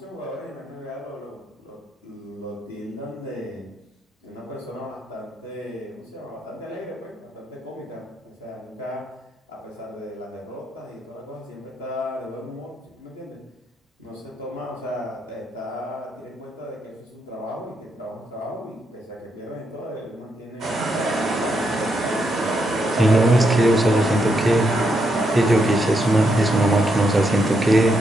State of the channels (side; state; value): both; normal; correlation 0.79